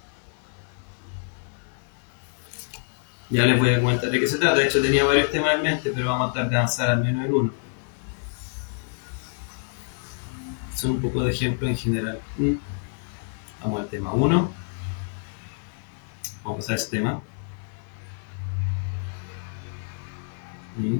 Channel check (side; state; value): right; silent; 60 dB below the other